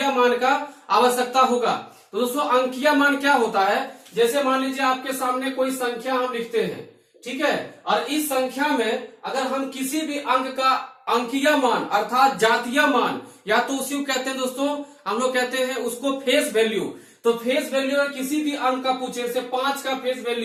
मान का आवश्यकता होगा। तो दोस्तों, अंकीय मान क्या होता है, जैसे मान लीजिए आपके सामने कोई संख्या हम लिखते हैं, ठीक है, और इस संख्या में अगर हम किसी भी अंक का अंकीय मान अर्थात जातीय मान, या तो उसी को कहते हैं दोस्तों, हम लोग कहते हैं उसको फेस वैल्यू। तो फेस वैल्यू अगर किसी भी अंक का पूछे, जैसे 5 का फेस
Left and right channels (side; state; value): both; identical; correlation 1.00